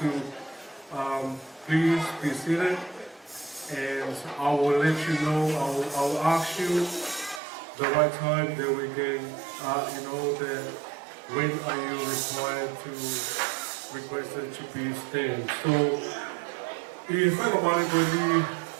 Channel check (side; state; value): left; drops out; at 7.4 s